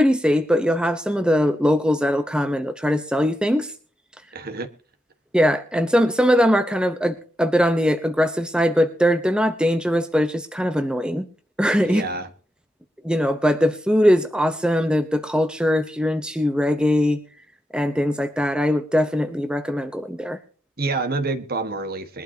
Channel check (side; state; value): both; normal; correlation 0.87